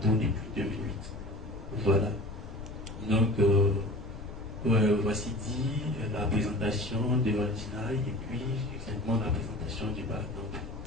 depuis 2008. Voilà. Donc, voici dit la présentation de Altinaï et puis exactement la présentation du Barcamp.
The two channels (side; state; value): left; noise; rumble, 11 dB below the sound